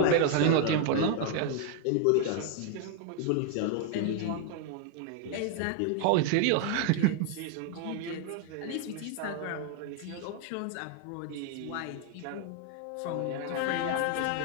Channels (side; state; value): both; different; correlation 0.00